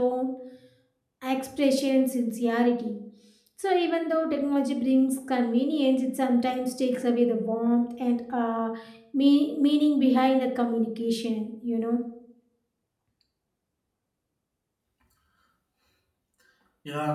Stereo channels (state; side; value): identical; both; correlation 1.00